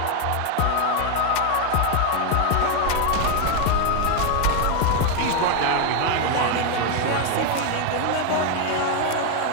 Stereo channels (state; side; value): different; both; correlation 0.01